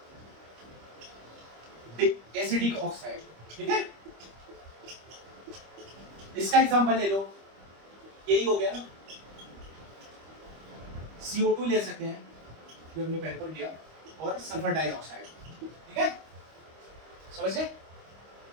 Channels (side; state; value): left; late; 25 ms